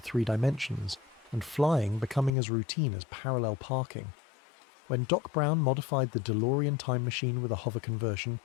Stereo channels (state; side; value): drops out; right; at 2.3 s